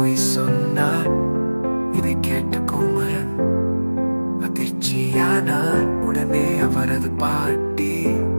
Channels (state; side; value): inverted; both; correlation -1.00